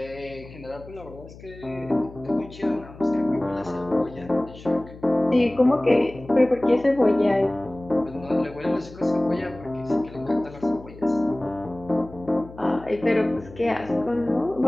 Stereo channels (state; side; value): noise; left; hum, 18 dB below the sound